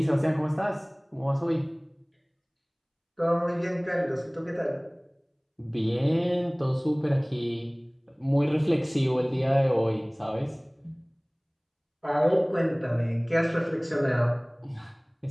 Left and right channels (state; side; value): identical; both; correlation 1.00